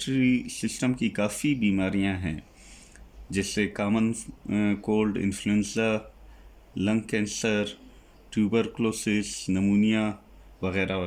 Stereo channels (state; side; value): identical; both; correlation 1.00